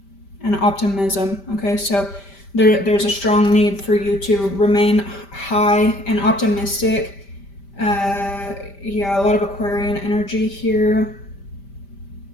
and optimism. Okay, so there's a strong need for you to remain high and optimistic. Yeah, a lot of Aquarian energy here.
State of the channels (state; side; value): late; right; 5.1 ms